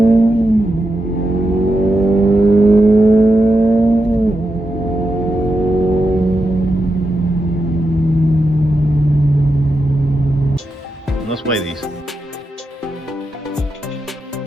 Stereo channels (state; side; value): normal; both; correlation 0.87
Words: Let's weigh these.